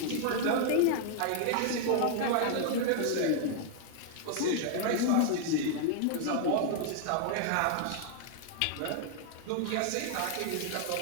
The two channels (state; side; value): different; both; correlation 0.00